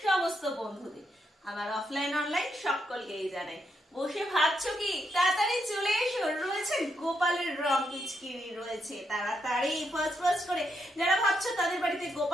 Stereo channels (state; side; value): normal; both; correlation 0.80